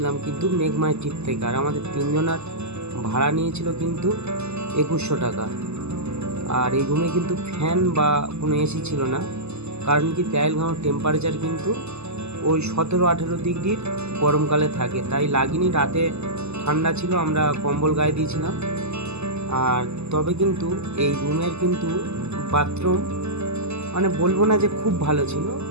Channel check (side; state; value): left; late; 0.80 ms